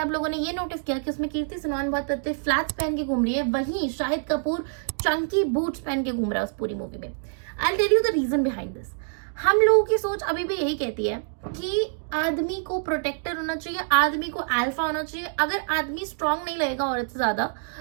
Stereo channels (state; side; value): silent; left; digital silence